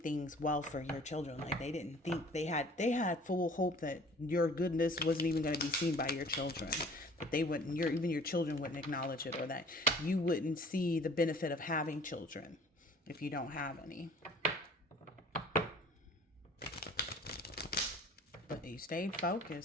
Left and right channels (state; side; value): normal; both; correlation 0.50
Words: well for your children. Like, they didn't think they had full hope that your goodness wasn't even going to be seen by your children, that they wouldn't, even your children wouldn't acknowledge it, or that you wouldn't see the benefit of having children if you don't have any. But you stayed